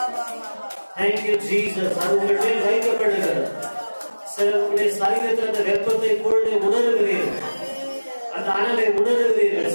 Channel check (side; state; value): both; inverted; correlation -1.00